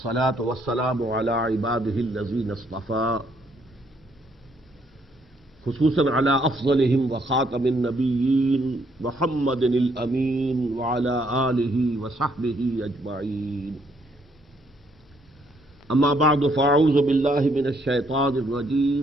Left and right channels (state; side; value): normal; both; correlation 0.70